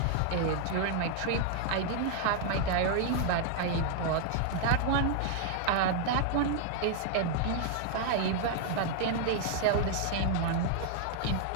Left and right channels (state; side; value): different; both; correlation 0.00